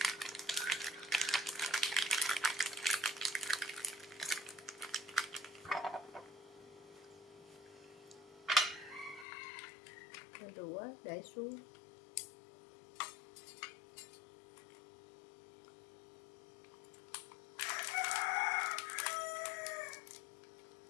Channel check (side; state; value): right; drops out; at 9.2 s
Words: Rồi đũa để xuống.